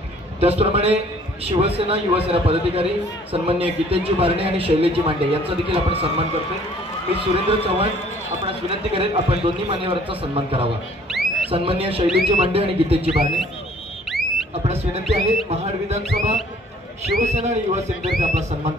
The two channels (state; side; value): normal; both; correlation 0.56